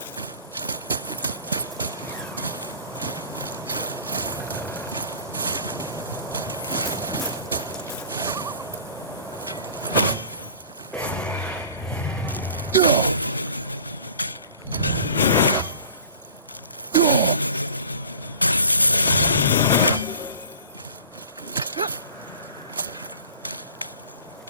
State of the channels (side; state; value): both; inverted; correlation -0.44